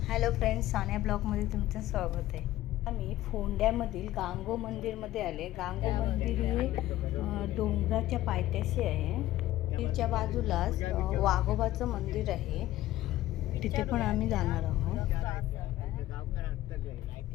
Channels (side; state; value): right; quieter; 15.0 dB